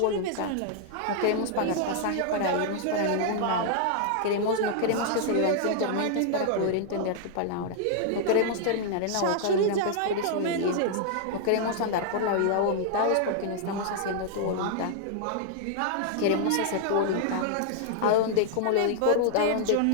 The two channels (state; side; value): different; both; correlation -0.01